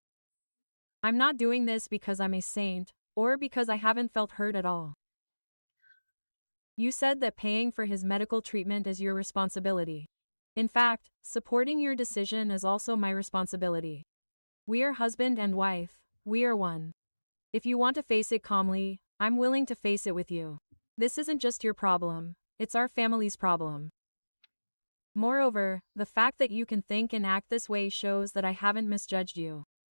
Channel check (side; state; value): both; inverted; correlation -1.00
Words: I'm not doing this because I'm a saint, or because I haven't felt hurt at all. You said that paying for his medical treatment is your responsibility. In fact, supporting your decision is also my responsibility. We are husband and wife, we are one. If you want to face it calmly, I'm willing to face it with you. This isn't just your problem, it's our family's problem. Moreover, the fact that you can think and act this way shows that I haven't misjudged you.